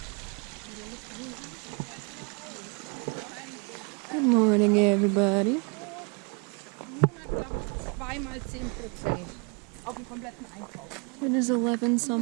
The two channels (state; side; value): quieter; left; 33.8 dB